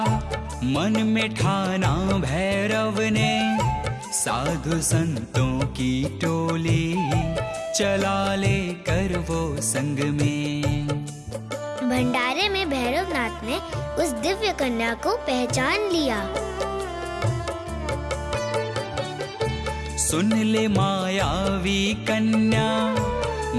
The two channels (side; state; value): both; identical; correlation 1.00